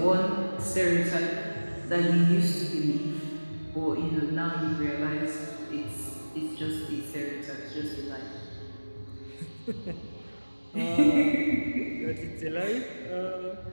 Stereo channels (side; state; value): both; inverted; correlation -1.00